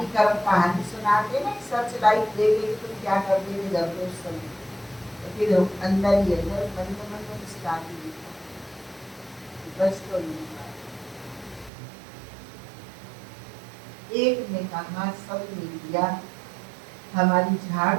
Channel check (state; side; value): drops out; left; at 11.7 s